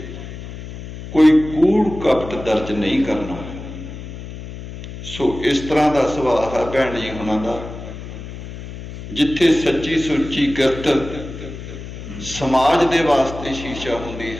ਕੋਈ ਕੂੜ ਕਪਟ ਦਰਜ ਨਹੀਂ ਕਰਨਾ। ਸੋ ਇਸ ਤਰ੍ਹਾਂ ਦਾ ਸੁਭਾਅ ਹੈ ਭੈਣ ਜੀ ਹੁਣਾਂ ਦਾ, ਜਿੱਥੇ ਸੱਚੀ ਸੁੱਚੀ ਕਿਰਤ ਸਮਾਜ ਦੇ ਵਾਸਤੇ ਸ਼ੀਸ਼ਾ ਹੁੰਦੀ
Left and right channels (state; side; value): noise; left; hum, 11 dB below the sound